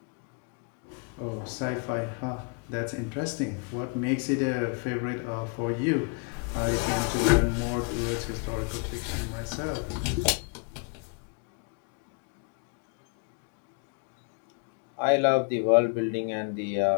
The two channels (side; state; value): right; quieter; 35.3 dB